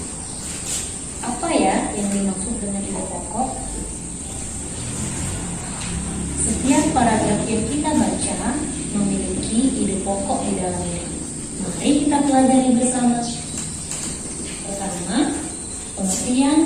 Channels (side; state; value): both; identical; correlation 1.00